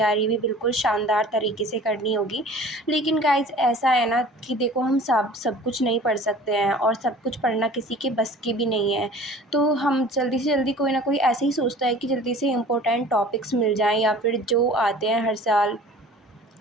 भी बिल्कुल शानदार तरीके से करनी होगी। लेकिन गाइस ऐसा है ना कि देखो, हम सब कुछ नहीं पढ़ सकते हैं और सब कुछ पढ़ना किसी के बस की भी नहीं है। तो हम जल्दी से जल्दी कोई ना कोई ऐसे ही सोचता है कि जल्दी से इम्पोर्टेंट टॉपिक्स मिल जाएँ या फिर जो आते हैं हर साल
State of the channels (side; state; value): both; normal; correlation 0.45